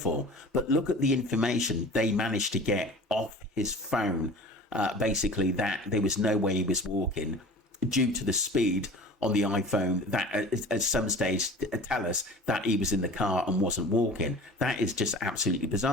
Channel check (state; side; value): normal; both; correlation 0.40